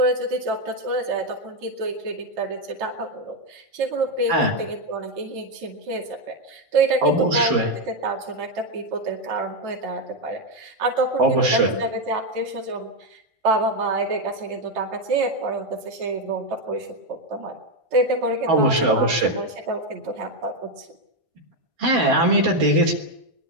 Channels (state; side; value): late; left; 1.6 ms